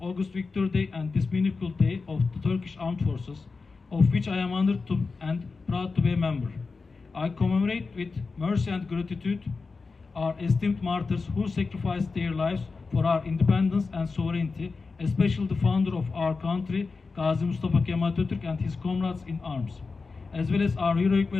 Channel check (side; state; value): right; quieter; 4.3 dB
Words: August Victory Day and this meaningful day of the Turkish Armed Forces, of which I am honored to and proud to be a member. I commemorate with mercy and gratitude our esteemed martyrs who sacrificed their lives for our independence and sovereignty, especially the founder of our country, Gazi Mustafa Kemal Atatürk, and his comrades in arms, as well as our heroic